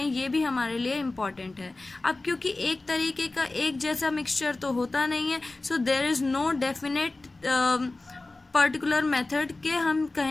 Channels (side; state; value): right; quieter; 3.1 dB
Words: ये भी हमारे लिए इम्पॉर्टेंट है। अब क्योंकि एक तरीके का एक जैसा मिक्सचर तो होता नहीं है, so there is no definite particular method के हम